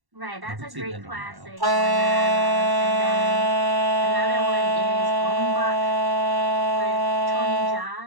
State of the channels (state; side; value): late; left; 1.1 ms